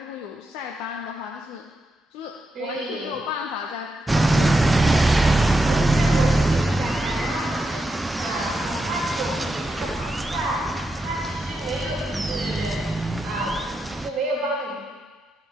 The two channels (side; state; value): both; normal; correlation 0.86